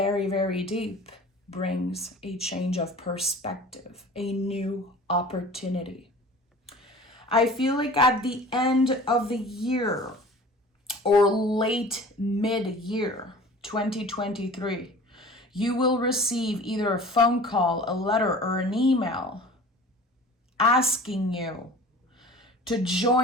very deep brings a change of perspective, a new opportunity. I feel like at the end of the year or late mid-year 2023, you will receive either a phone call, a letter, or an email asking you to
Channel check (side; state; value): both; normal; correlation 0.42